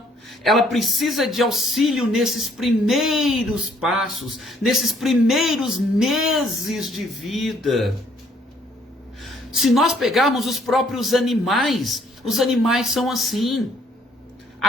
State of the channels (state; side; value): normal; both; correlation 0.65